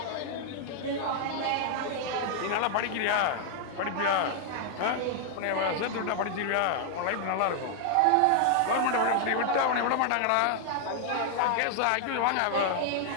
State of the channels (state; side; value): different; both; correlation 0.00